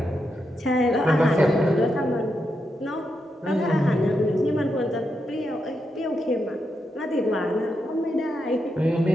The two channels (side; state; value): both; normal; correlation 0.84